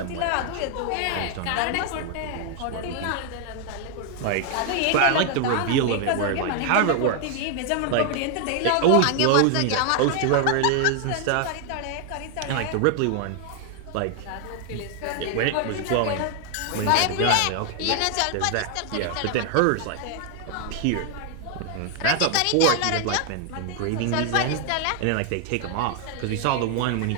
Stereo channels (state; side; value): different; both; correlation 0.00